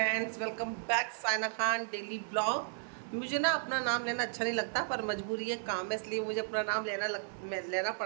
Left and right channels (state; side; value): silent; left; digital silence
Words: welcome back Saina Khan daily blog. मुझे ना अपना नाम लेना अच्छा नहीं लगता, पर मजबूरी है, काम है, इसलिए मुझे अपना नाम लेना